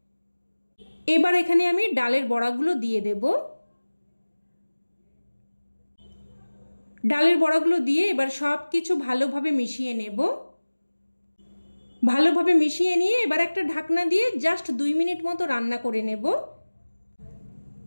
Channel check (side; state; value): both; inverted; correlation -1.00